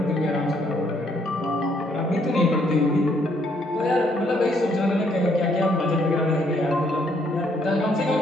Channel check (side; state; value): both; normal; correlation 0.69